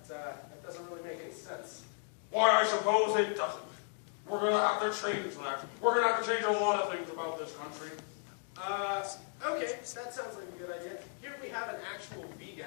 doesn't really make any sense. Why, I suppose it doesn't. We're gonna have to change that. We're gonna have to change a lot of things about this country. Okay, that sounds like a good idea. Here we have an actual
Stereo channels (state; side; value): silent; right; 54 dB below the other